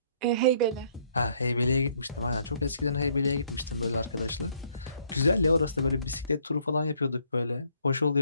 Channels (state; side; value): inverted; both; correlation -0.66